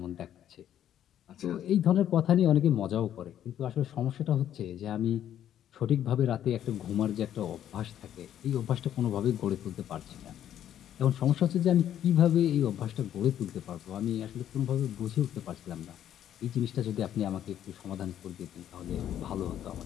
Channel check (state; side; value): quieter; right; 10.8 dB